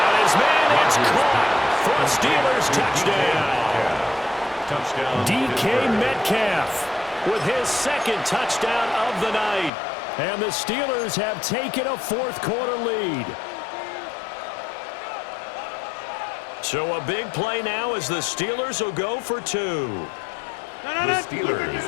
his man. It's caught for a Steelers touchdown. DK Metcalf with his 2nd touchdown of the night. And the Steelers have taken a fourth quarter lead. So a big play now as the Steelers will go for 2. The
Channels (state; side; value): drops out; right; at 9.7 s